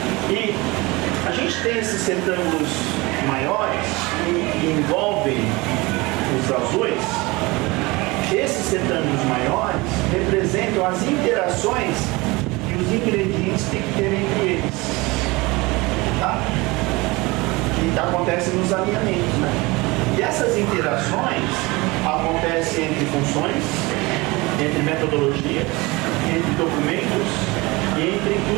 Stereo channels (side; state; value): left; quieter; 23.5 dB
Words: E a gente tem esses retângulos maiores que envolvem os azuis. Esses retângulos maiores representam as interações que os ingredientes têm que ter entre eles. Tá? Que acontece nos alinhamentos, né? E essas interações acontecem entre funções, entre metodologias, entre documentos e entre